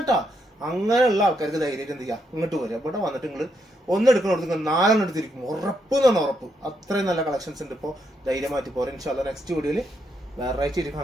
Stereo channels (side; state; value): both; normal; correlation 0.78